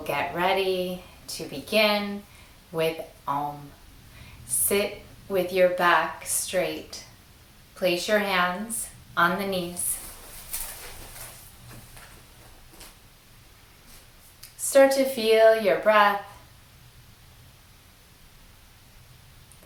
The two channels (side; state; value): both; identical; correlation 1.00